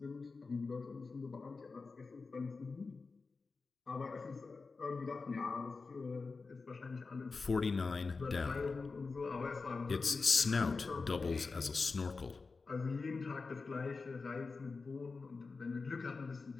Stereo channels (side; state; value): right; quieter; 4.3 dB